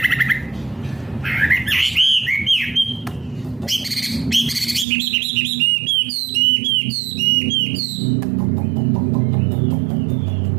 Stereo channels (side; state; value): left; drops out; at 4.9 s